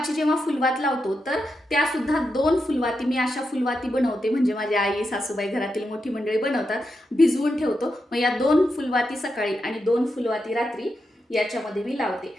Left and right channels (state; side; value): normal; both; correlation 0.86